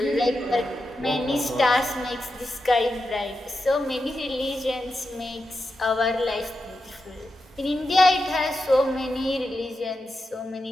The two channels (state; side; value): normal; both; correlation 0.89